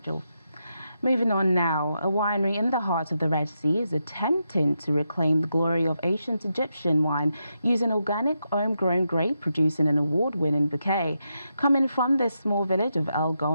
Moving on now, a winery in the heart of the Red Sea is attempting to reclaim the glory of ancient Egyptian wine using organic homegrown grape, producing an award-winning bouquet. Coming from this small village of El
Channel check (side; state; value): both; inverted; correlation -0.85